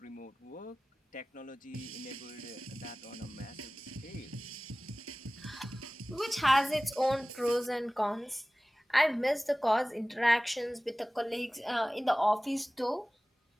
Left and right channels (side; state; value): both; normal; correlation 0.98